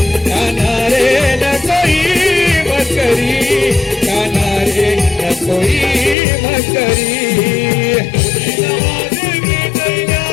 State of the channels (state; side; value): drops out; right; at 6.2 s